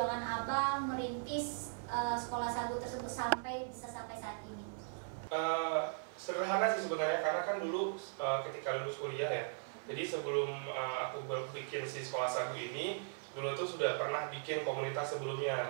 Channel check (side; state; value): left; silent; 52 dB below the other